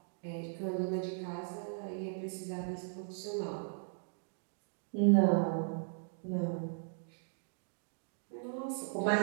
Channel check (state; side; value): silent; left; digital silence